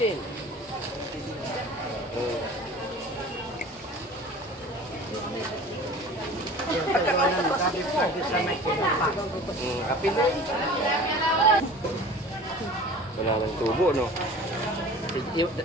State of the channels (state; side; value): normal; both; correlation 0.41